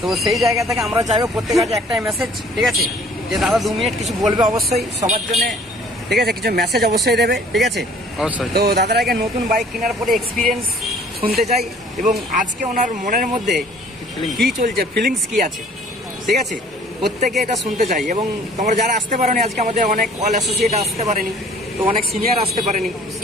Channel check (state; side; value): normal; both; correlation 0.54